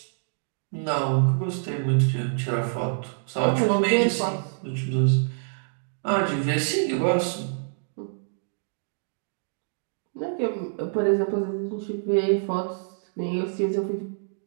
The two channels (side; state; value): left; silent; digital silence